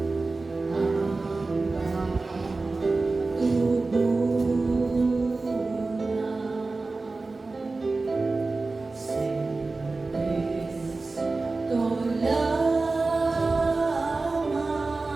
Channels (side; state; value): left; quieter; 3.6 dB